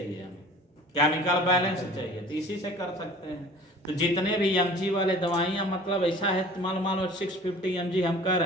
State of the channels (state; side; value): normal; both; correlation 0.45